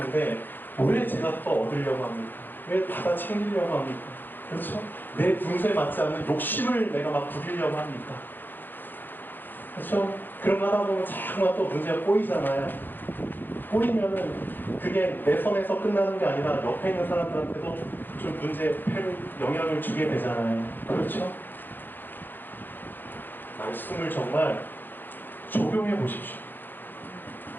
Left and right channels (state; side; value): late; right; 0.092 ms